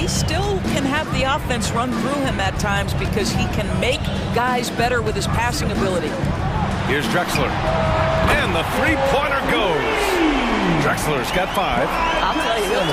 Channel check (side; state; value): both; identical; correlation 1.00